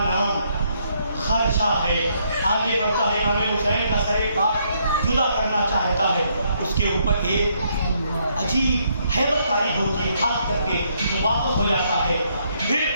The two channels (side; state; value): both; inverted; correlation -0.72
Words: خرشہ ہے، آگے بڑھتا ہے، امام حسین کا سر پاک جدا کرنا چاہتا ہے، اس کے اوپر ایک عجیب ہیبت کاری ہوتی ہے، کھاس کر کے واپس ہو جاتا ہے، پھر